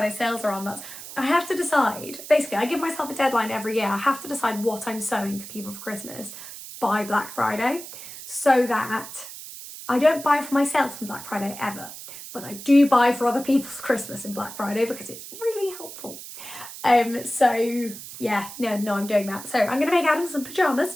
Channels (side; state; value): right; noise; hiss, 12 dB below the sound